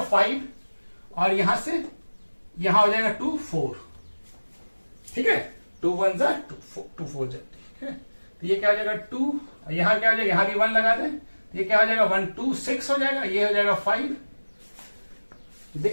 5 और यहां से यहां हो जाएगा 2, 4। ठीक है, 2 1 जा 2 4 जा। ठीक है, तो ये क्या हो जाएगा 2, यहां क्या हो जाएगा, यहां भी 1 लगा दें, तो ये क्या हो जाएगा 1 2 6 हो जाएगा, ये हो जाएगा 5।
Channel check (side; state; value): both; inverted; correlation -1.00